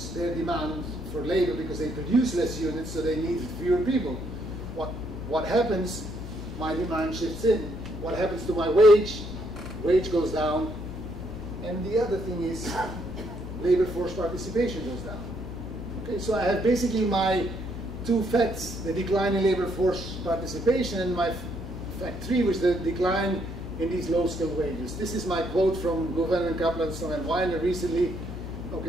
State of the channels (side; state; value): left; noise; hum, 9 dB below the sound